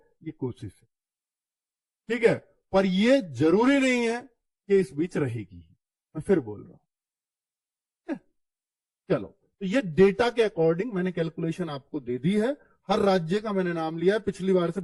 कोशिश है। ठीक है, पर ये जरूरी नहीं है कि इस बीच रहेगी, मैं फिर बोल रहा हूं। चलो, तो ये डेटा के अकॉर्डिंग मैंने कैलकुलेशन आपको दे दी है। हर राज्य का मैंने नाम लिया है, पिछली बार से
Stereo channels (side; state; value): both; identical; correlation 1.00